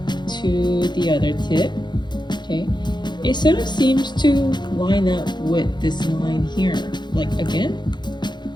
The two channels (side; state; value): right; late; 0.21 ms